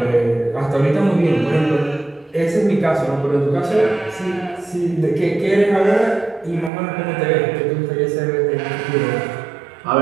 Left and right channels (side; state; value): left; drops out; at 6.7 s